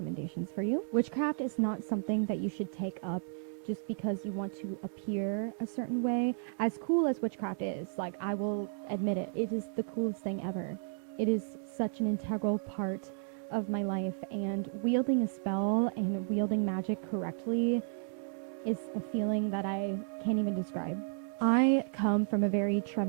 for you. Witchcraft is not something that you should take up just because you want to appear a certain way. As cool as witchcraft is, like, I will admit it, it is the coolest thing ever. It is such an integral part of my life, and wielding a spell and wielding magic correctly is a feeling that I can't even describe. I come from a very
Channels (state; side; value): silent; left; digital silence